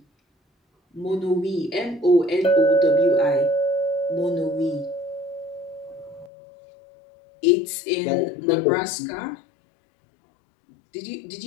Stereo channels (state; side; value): drops out; right; at 6.3 s